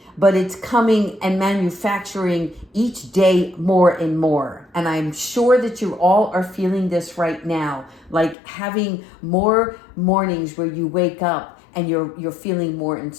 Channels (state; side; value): drops out; right; at 8.3 s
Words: but it's coming and manufacturing each day more and more. And I'm sure that you all are feeling this right now, like having more mornings where you wake up and you're feeling more